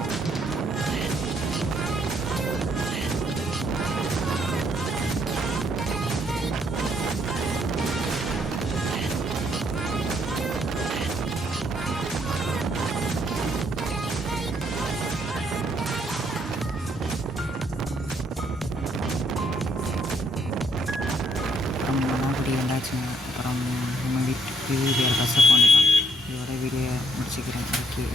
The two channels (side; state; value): both; normal; correlation 0.70